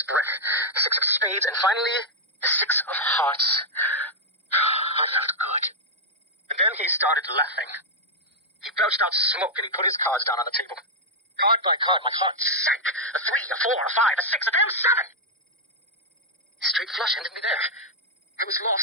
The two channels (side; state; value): both; normal; correlation -0.02